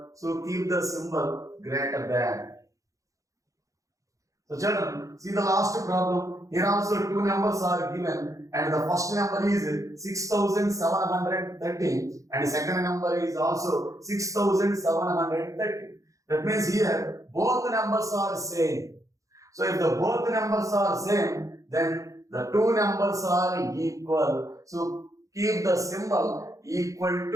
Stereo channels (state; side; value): late; left; 0.16 ms